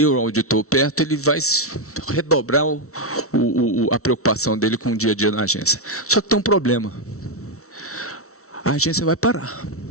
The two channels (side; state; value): right; late; 0.63 ms